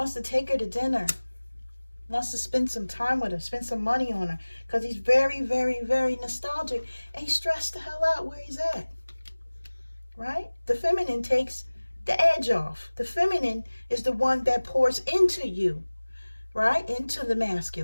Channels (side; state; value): both; inverted; correlation -1.00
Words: to take her to dinner. Wants to spend some time with her. Spend some money on her. Because he's very, very, very nostalgic. And he's stressed the hell out where he's at. Right? The feminine takes the edge off. The feminine is the one that pours into you. Right? Into the